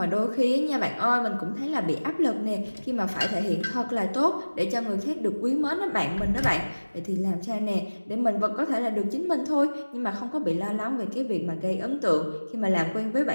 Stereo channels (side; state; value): both; inverted; correlation -1.00